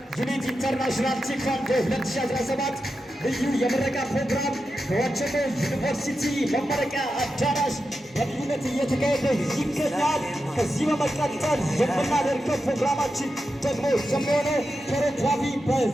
ዩኒት ኢንተርናሽናል ቴኳንዶ 2017 ልዩ የምረቃ ፕሮግራም በዋቸሞ ዩኒቨርሲቲ መመረቂያ አዳራሽ በልዩነት እየተካሄደ ይገኛል። ከዚህ በመቀጠል የምናደርገው ፕሮግራማችን ደግሞ የሚሆነው ኮሪዮግራፊ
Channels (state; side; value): normal; both; correlation 0.89